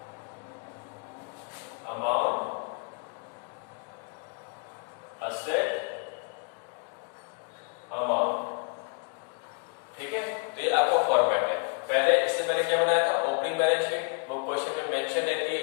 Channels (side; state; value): right; quieter; 39.9 dB